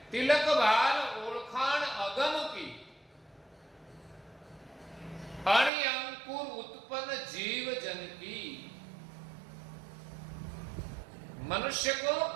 तिलक भाल ओळखाण अगम की अणि अंकुर उत्पन्न जीव जन की। मनुष्य को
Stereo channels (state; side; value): drops out; left; at 5.7 s